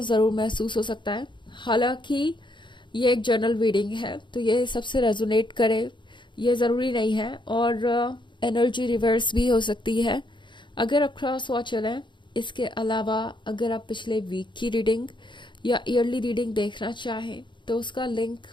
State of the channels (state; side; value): late; right; 0.23 ms